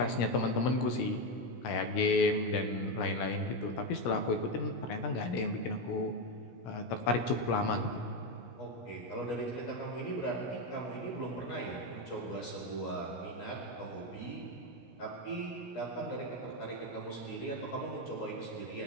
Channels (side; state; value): right; late; 17 ms